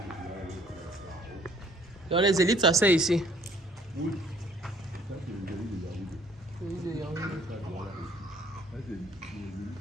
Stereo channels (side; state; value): both; normal; correlation 0.59